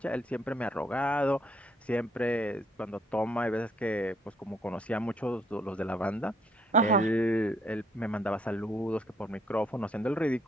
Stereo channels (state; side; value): normal; both; correlation 0.68